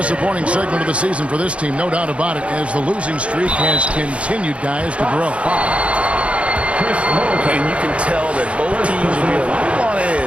segment of the season for this team, no doubt about it, as the losing streak has continued, guys, to grow. And you can tell that both teams will be a little on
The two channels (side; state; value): left; late; 0.061 ms